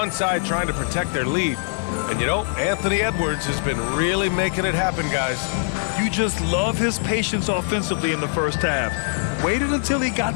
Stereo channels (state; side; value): silent; right; 64 dB below the other